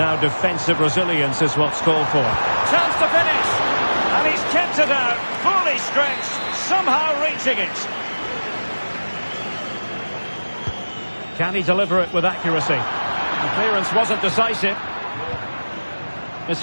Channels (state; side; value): inverted; both; correlation -1.00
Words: defensive resilience is what's called for. Chance to finish. And he's kept it out. Fully stretched. Somehow reaching it. Can he deliver it with accuracy? The clearance wasn't decisive. It's